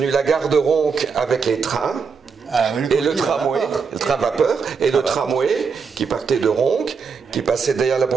la gare de Ronc avec les trains. Et le tramway, le train vapeur, et le tramway qui partait de Ronc, qui passait derrière la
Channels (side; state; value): left; quieter; 5.5 dB